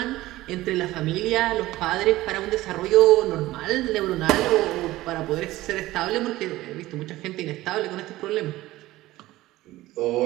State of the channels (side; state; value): left; quieter; 17.1 dB